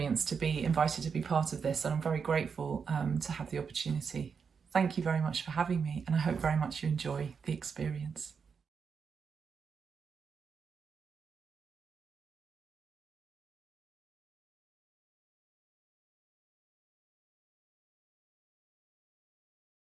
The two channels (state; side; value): quieter; left; 6.0 dB